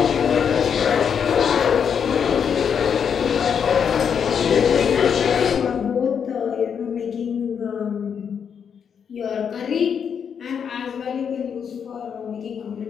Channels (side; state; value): right; quieter; 7.3 dB